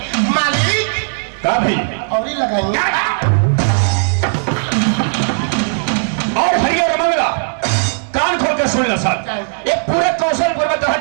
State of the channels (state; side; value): silent; left; digital silence